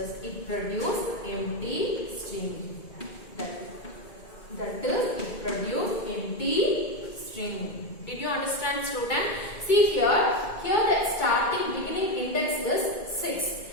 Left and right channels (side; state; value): right; late; 2.1 ms